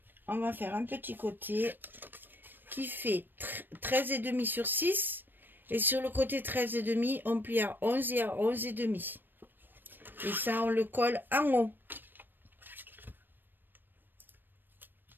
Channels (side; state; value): left; late; 0.093 ms